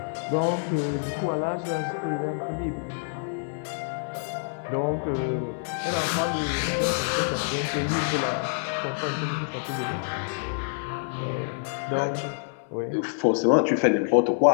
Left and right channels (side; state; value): right; silent; digital silence